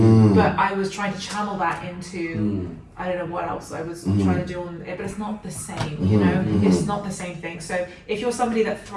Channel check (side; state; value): both; identical; correlation 1.00